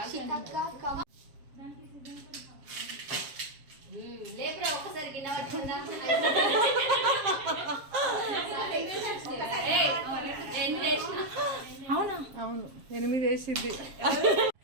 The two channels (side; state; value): left; late; 7.4 ms